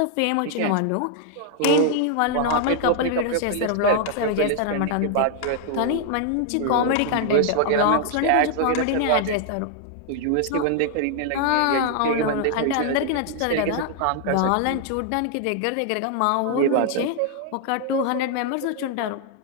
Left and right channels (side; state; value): both; different; correlation 0.00